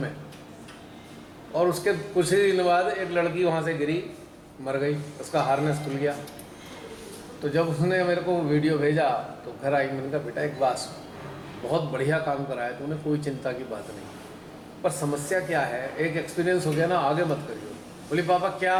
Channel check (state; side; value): identical; both; correlation 1.00